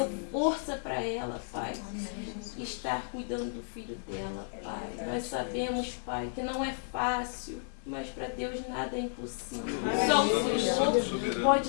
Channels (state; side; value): silent; right; 56 dB below the other